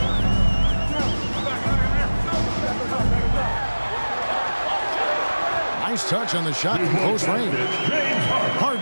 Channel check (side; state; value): both; inverted; correlation -1.00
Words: Nice touch on the shot from close range.